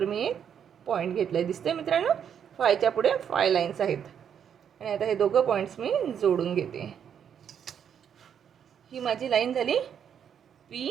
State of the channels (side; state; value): left; quieter; 8.3 dB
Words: मी एक पॉईंट घेतला आहे. दिसतंय मित्रांनो, 5च्या पुढे 5 लाईन्स आहेत. आणि आता हे दोघं पॉईंट्स मी जोडून घेते. ही माझी लाईन झाली